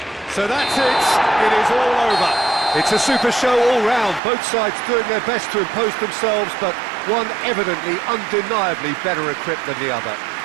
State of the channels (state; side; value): drops out; left; at 4.2 s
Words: So that's it. It is all over. It's a super show all round. Both sides doing their best to impose themselves, but one evidently, undeniably better equipped than the other.